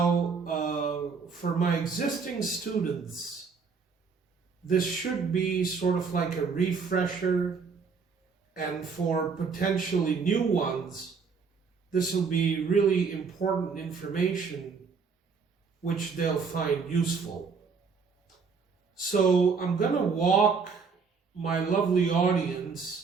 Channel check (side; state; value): left; quieter; 5.3 dB